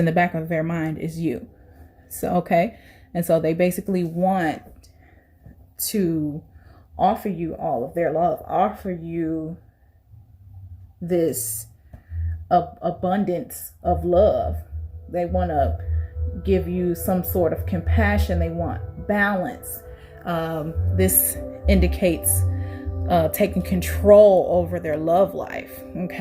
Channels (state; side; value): identical; both; correlation 1.00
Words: the back of their mind is you. So, okay. And so they basically want to offer you all of their love, offer you this abundance of love. They want to give you some sort of compassion. They want balance. This indicates taking control over their love life.